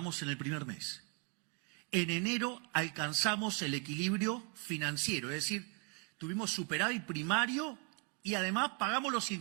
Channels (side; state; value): left; quieter; 34.9 dB